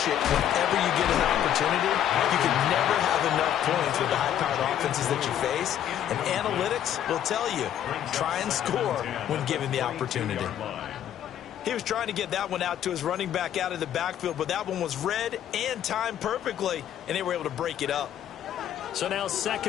it whenever you get an opportunity. You can never have enough points with the high-powered offenses that you face. And analytics will tell you, try and score when given the opportunity. He was trying to get that one out to his running back out of the backfield, but that one was read and timed perfectly, and they were able to break it up. So now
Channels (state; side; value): quieter; right; 10.6 dB